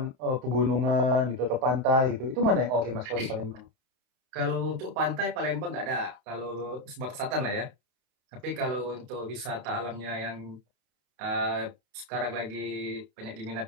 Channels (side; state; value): left; late; 31 ms